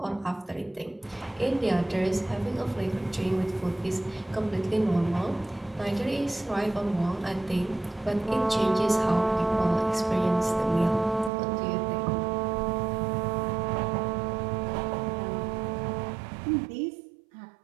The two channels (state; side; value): drops out; left; at 11.3 s